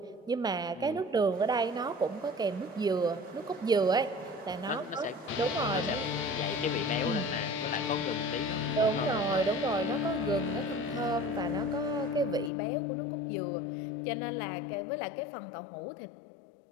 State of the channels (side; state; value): right; drops out; at 12.5 s